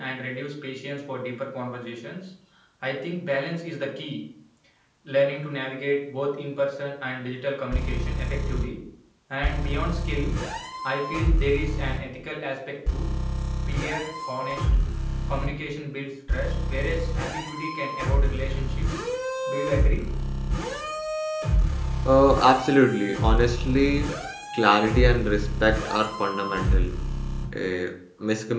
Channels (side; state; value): both; identical; correlation 1.00